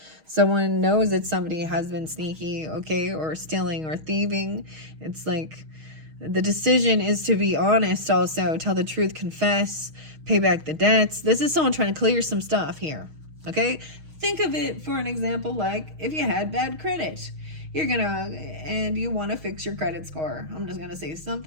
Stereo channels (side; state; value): left; late; 6.4 ms